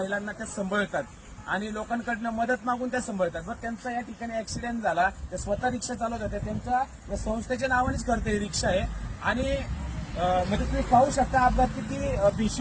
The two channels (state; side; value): identical; both; correlation 1.00